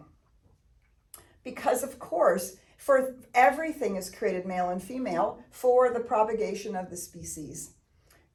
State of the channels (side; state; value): both; identical; correlation 1.00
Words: Because of course, for everything is created male and female for the propagation of the species.